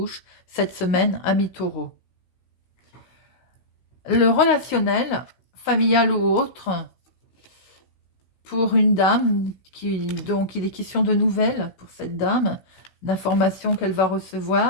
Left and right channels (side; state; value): right; late; 16 ms